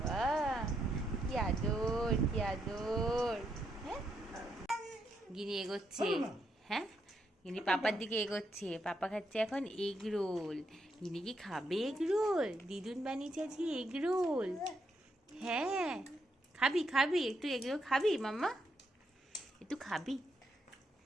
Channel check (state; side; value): normal; both; correlation 0.79